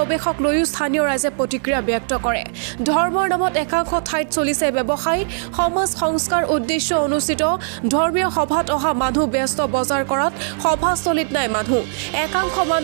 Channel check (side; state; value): left; silent; digital silence